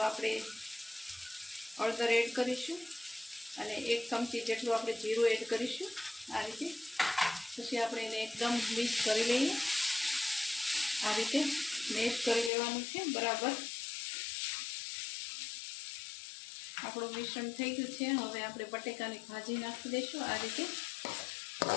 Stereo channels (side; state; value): right; drops out; at 12.5 s